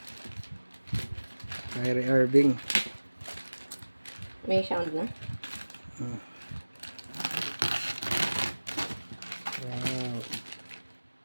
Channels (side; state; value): both; inverted; correlation -1.00